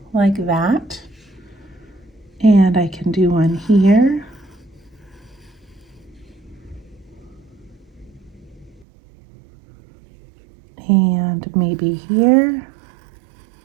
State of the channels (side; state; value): left; drops out; at 8.8 s